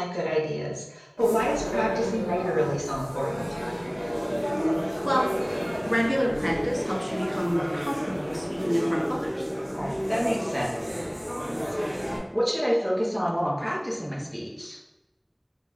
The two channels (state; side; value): identical; both; correlation 1.00